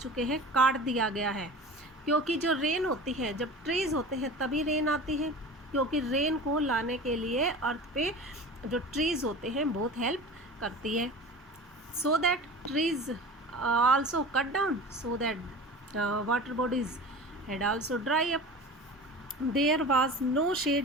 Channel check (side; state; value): both; normal; correlation 0.36